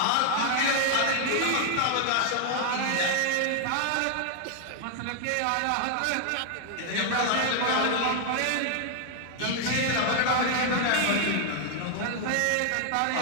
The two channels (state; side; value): different; both; correlation 0.00